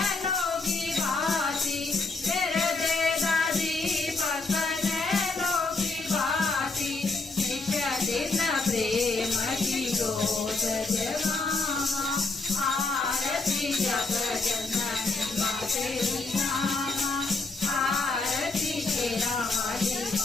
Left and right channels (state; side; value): quieter; right; 3.7 dB